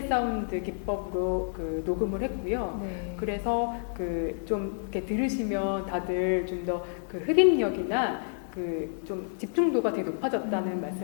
사운드 기법으로 그 녹음을 했고요. 네. 그래서 그 좀 이렇게 들으시면 다들 좀 더 그 흡입력이나 그 좀 집중도가 되게 높아졌다는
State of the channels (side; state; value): right; silent; 58 dB below the other